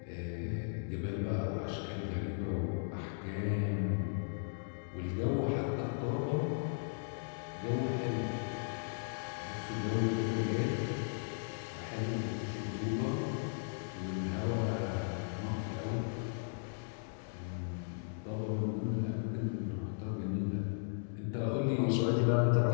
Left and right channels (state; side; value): silent; right; digital silence